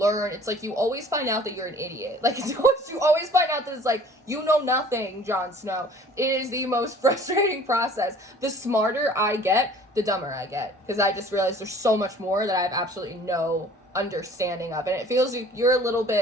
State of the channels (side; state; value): both; normal; correlation 0.50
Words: it's like you always find out that you're an idiot. Like, you always find out that it's like, you know nothing, Jon Snow. It is the most frustrating process. The smarter I get, the dumber I get. Because I just realized there's so much more that I have absolutely no understanding of. And it feels like you're a little